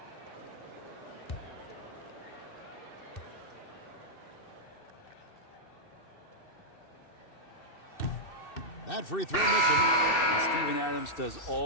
That free throw missing. And Steven Adams does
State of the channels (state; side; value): late; right; 2.6 ms